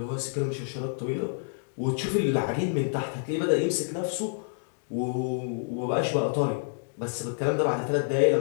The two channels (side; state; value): right; silent; digital silence